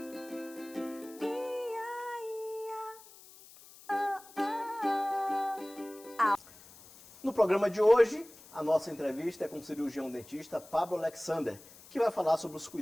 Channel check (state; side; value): noise; left; hiss, 21 dB below the sound